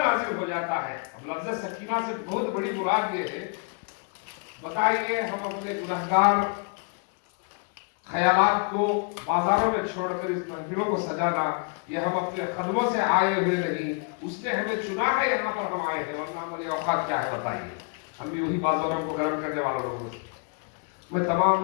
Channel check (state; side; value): quieter; right; 39.0 dB